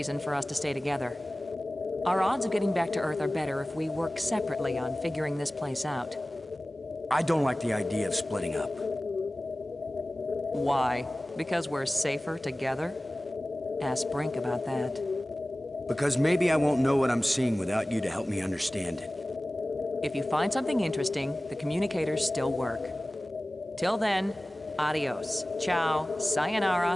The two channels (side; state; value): both; normal; correlation 0.97